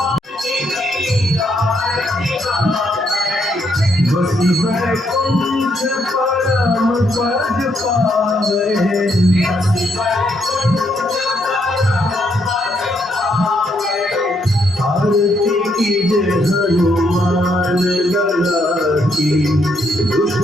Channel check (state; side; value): normal; both; correlation 0.75